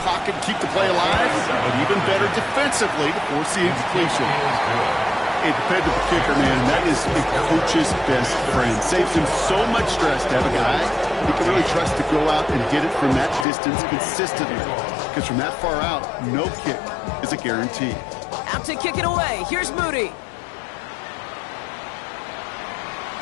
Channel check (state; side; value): drops out; right; at 13.5 s